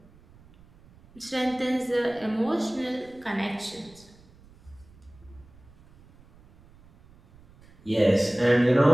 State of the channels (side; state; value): right; noise; rumble, 26 dB below the sound